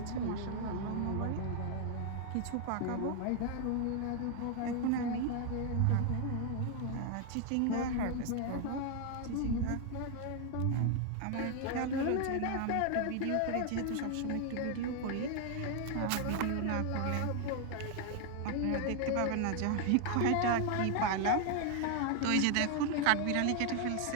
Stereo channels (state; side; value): different; both; correlation 0.00